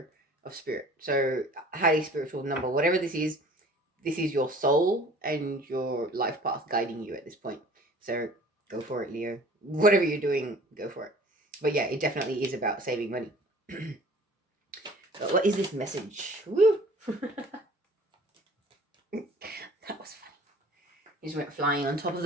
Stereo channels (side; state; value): both; normal; correlation 0.48